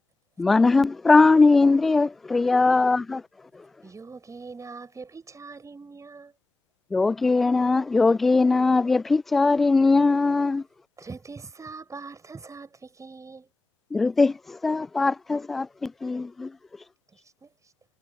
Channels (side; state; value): right; quieter; 3.2 dB